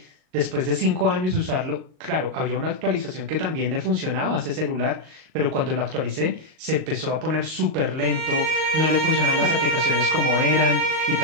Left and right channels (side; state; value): left; late; 38 ms